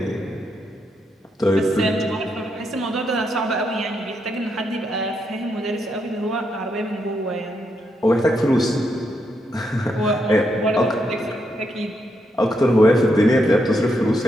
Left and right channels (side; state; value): both; normal; correlation 0.80